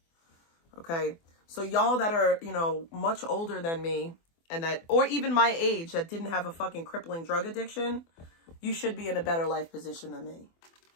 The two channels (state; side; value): late; right; 24 ms